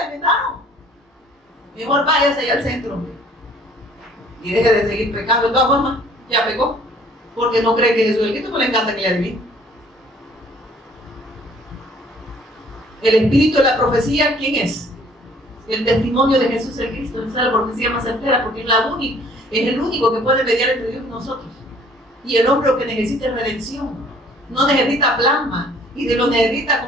Mejor váyase allá al centro y deje de seguir pecando. De todas formas, ya pecó, porque no cree que Jesús es el Cristo, pues le encanta que le adivine. El espíritu de la profecía, ¿quién es? El testimonio de Jesús el Cristo. Esa es la profecía más certera, porque es el único que puede mediar entre Dios y nosotros. Y el hombre que necesita redención, no necesita plasma, y de lo necesita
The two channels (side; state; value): both; normal; correlation 0.56